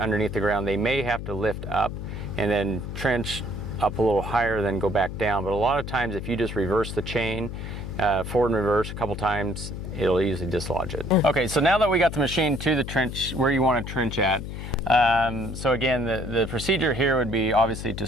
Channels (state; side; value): noise; left; hum, 7 dB below the sound